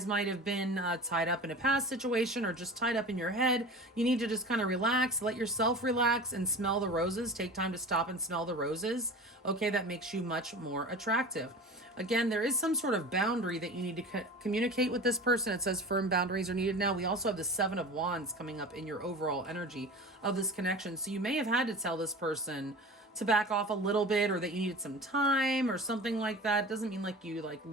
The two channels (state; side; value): normal; both; correlation 0.35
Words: might have been tied up in a past situation or just tied up in your head. You need to just kind of relax, let yourself relax and smell the roses. Take time to stop and smell the roses. Okay, that makes you much more attractive. Again, there is some sort of boundary that you need to communicate with this person. It says firm boundaries are needed now. We also have the 7 of Wands coming up in your overall energy of this connection. So you may have had to tell this person to back off a little bit or that you needed some time or something like that. It doesn't mean like you